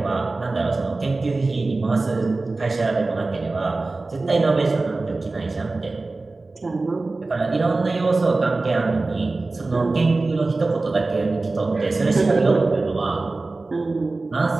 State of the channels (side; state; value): left; quieter; 3.4 dB